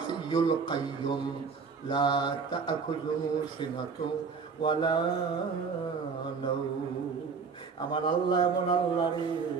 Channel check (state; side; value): quieter; left; 5.3 dB